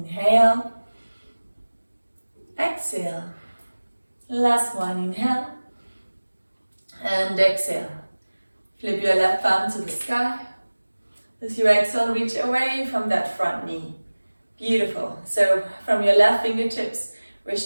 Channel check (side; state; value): both; inverted; correlation -1.00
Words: Exhale. Last one, inhale. And exhale. Flip your left palm to the sky. As you exhale, reach away from that front knee. Beautiful. So from your left fingertips, we're